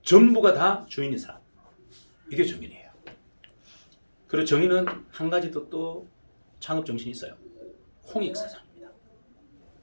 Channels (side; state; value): both; inverted; correlation -1.00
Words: 전부가 다 주인인 사람, 이게 정인이에요. 그리고 정인은 한 가지 또 창업 정신이 있어요. 홍익사상입니다.